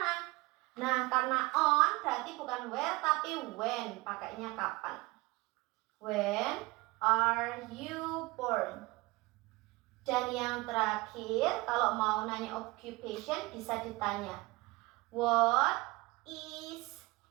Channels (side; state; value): left; quieter; 23.0 dB